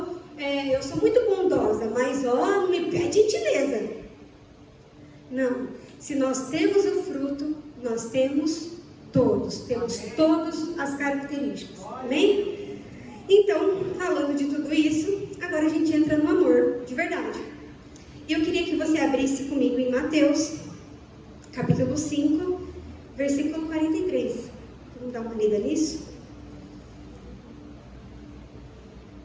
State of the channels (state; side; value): identical; both; correlation 1.00